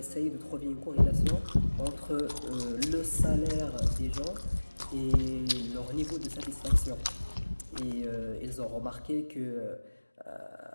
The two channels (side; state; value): both; inverted; correlation -1.00